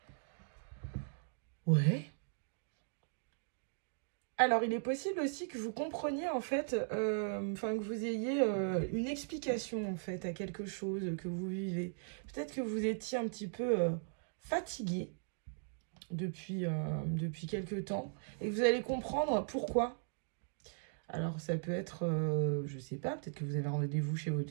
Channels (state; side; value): silent; left; digital silence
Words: Ouais. Alors, il est possible aussi que vous compreniez, en fait, que vous ayez une explication, en fait, à quelque chose que vous vivez. Peut-être que vous étiez un petit peu fatigué depuis quelque temps et que vous allez comprendre pourquoi. Alors, ça peut être, je sais pas, peut-être que vous avez rendez-vous chez